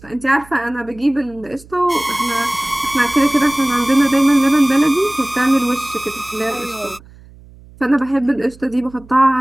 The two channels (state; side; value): noise; right; hum, 23 dB below the sound